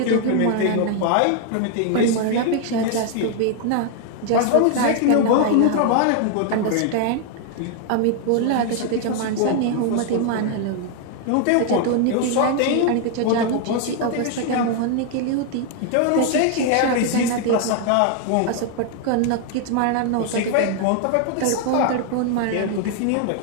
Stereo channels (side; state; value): both; different; correlation 0.00